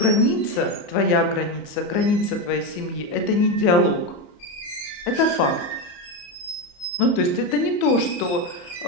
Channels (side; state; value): right; late; 34 ms